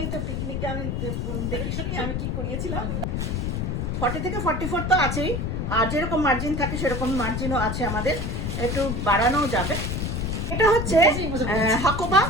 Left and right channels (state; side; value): noise; left; rumble, 1 dB below the sound